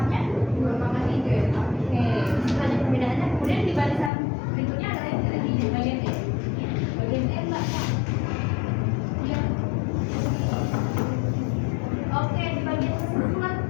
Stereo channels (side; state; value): right; drops out; at 4.1 s